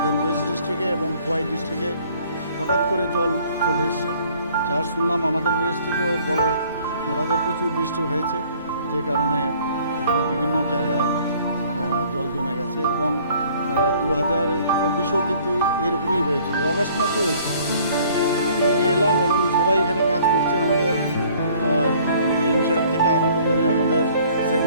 ওয়েস্ট ডিস্ট্রিক্টে এবং খোয়াই ডিস্ট্রিক্টে হঠাৎ করে জল চলে এসছে। যা শুনলাম আমাদের ওয়েস্টে তো বড় মোড়াতে প্রচুর বৃষ্টি হয়েছে, যে কারণে এখানে বিভিন্ন জায়গায় জল জমে গেছে এবং 2024-এও কিন্তু এরকমই হয়েছিল, অগাস্ট মাসে হয়েছে। এখানে এলাম এবং সবাই এখানে কাজ করছে, আমাদের ডিএম সাহেব থেকে আরম্ভ করে আমাদের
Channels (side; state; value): both; inverted; correlation -0.57